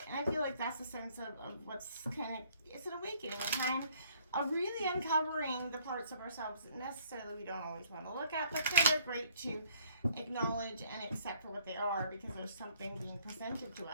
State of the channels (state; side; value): inverted; both; correlation -0.60